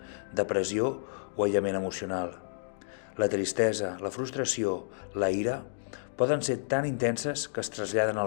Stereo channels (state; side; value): silent; right; digital silence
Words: depressió o aïllament emocional. La tristesa, la frustració, la ira poden ser tan intenses que es traslladen